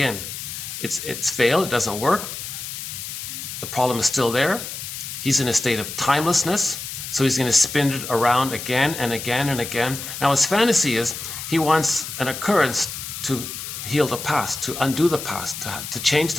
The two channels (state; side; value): noise; left; hiss, 8 dB below the sound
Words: It's failed, it doesn't work. The problem is still there. He's in a state of timelessness. So he's going to spin it around again and again and again. Now his fantasy is he wants an occurrence to heal the past, to undo the past, to change